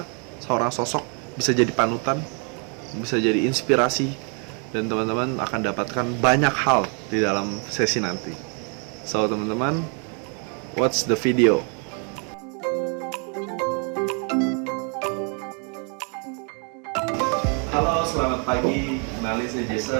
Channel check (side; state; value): left; quieter; 38.4 dB